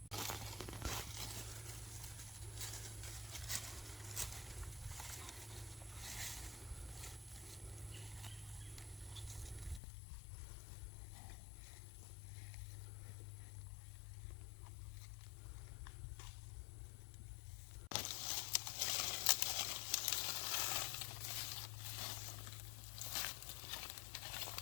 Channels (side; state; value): right; drops out; at 9.8 s